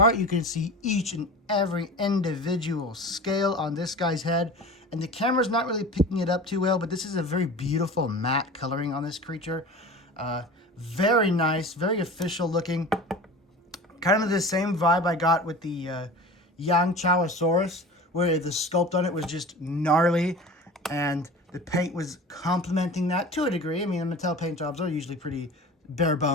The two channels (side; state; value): both; normal; correlation 0.36